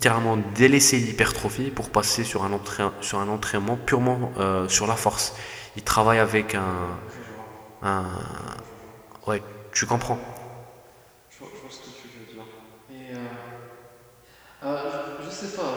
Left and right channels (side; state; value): both; identical; correlation 1.00